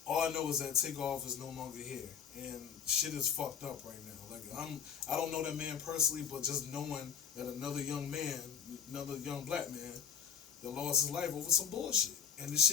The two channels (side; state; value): right; quieter; 7.7 dB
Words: All I know is that Takeoff is no longer here, and shit is fucked up right now. Like, I don't know that man personally, but just knowing that another young black man that lost his life over some bullshit, and this